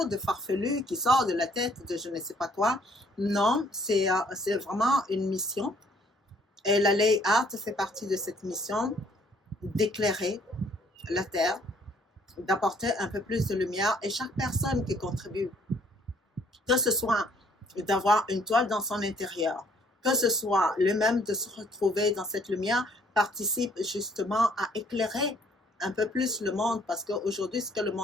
de farfelu qui sort de la tête de je ne sais pas quoi. Non, c'est vraiment une mission. Et la Lay Art fait partie de cette mission d'éclairer la Terre, d'apporter un peu plus de lumière. Et chaque personne qui contribue, que ce soit d'avoir une toile dans son intérieur, que ce soit le même de se retrouver dans cette lumière, participe justement à éclairer un peu plus le monde, parce qu'aujourd'hui, ce que le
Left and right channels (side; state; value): both; normal; correlation 0.63